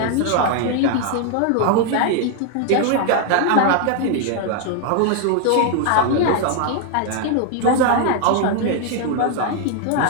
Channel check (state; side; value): different; both; correlation 0.00